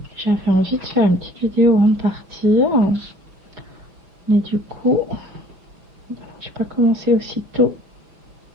J'avais envie de faire une petite vidéo avant de partir. Mais du coup, je n'ai pas commencé aussitôt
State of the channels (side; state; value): left; late; 5.4 ms